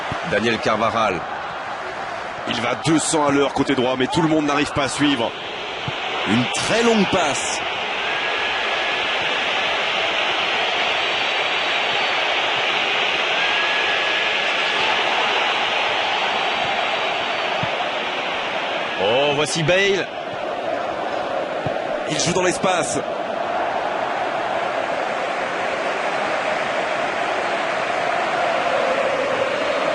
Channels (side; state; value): both; identical; correlation 1.00